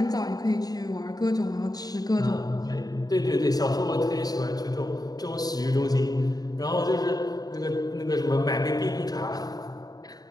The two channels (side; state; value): right; late; 0.19 ms